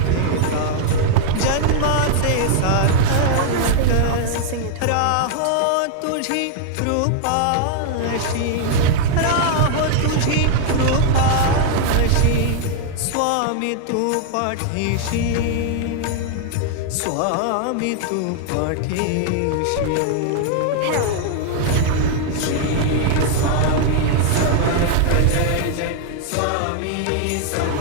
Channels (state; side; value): different; both; correlation 0.00